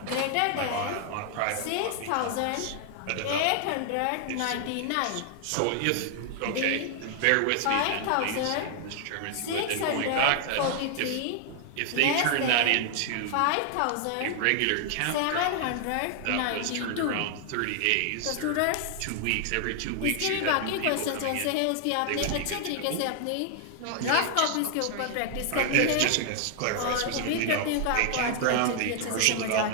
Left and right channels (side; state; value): both; different; correlation 0.00